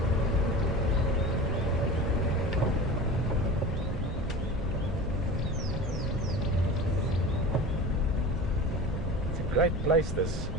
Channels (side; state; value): right; noise; rumble, 6 dB below the sound